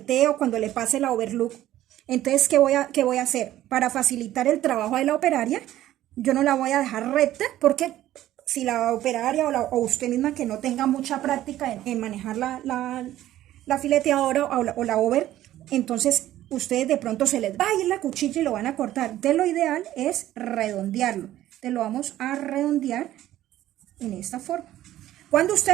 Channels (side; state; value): left; quieter; 13.7 dB